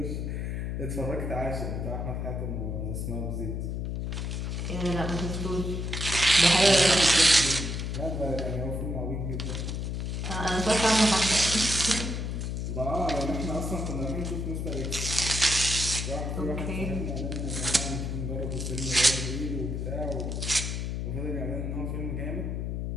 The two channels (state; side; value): noise; left; hum, 2 dB below the sound